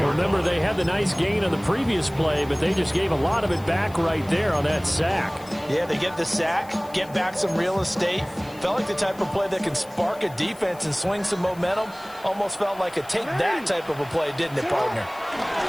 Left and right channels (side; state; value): left; noise; hiss, 23 dB below the sound